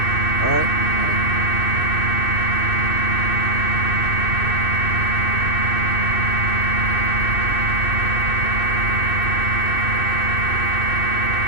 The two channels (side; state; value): right; late; 2.6 ms